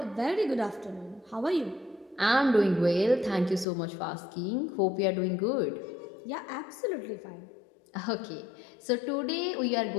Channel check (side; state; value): right; drops out; at 3.7 s